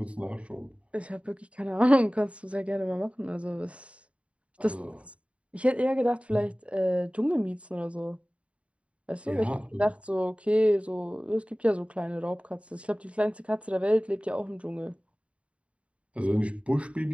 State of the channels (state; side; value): late; left; 0.063 ms